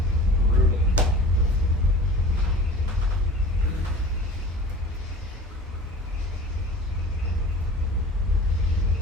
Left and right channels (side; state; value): both; normal; correlation 0.41